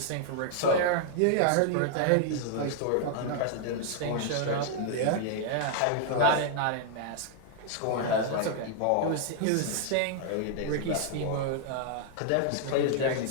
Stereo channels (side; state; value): both; different; correlation -0.01